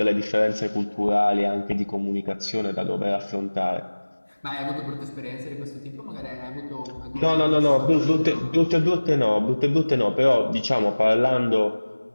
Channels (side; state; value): both; inverted; correlation -1.00